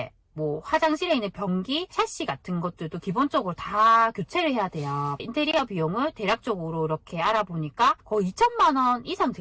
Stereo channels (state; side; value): identical; both; correlation 1.00